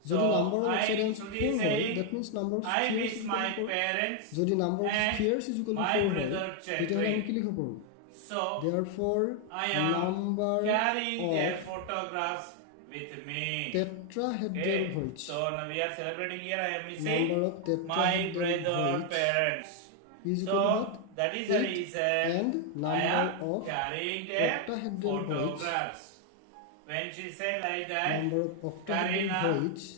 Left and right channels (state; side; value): different; both; correlation 0.00